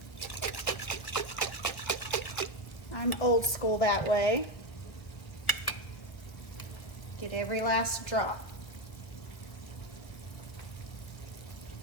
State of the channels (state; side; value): late; right; 1.2 ms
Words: I'm old school that way. Get every last drop.